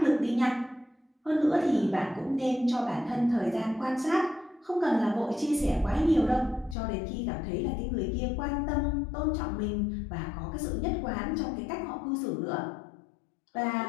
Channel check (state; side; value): drops out; right; at 6.8 s